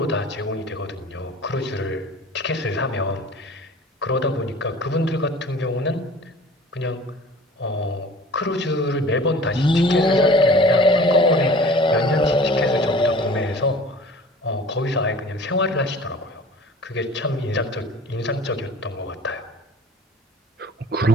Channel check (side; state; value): both; normal; correlation 0.44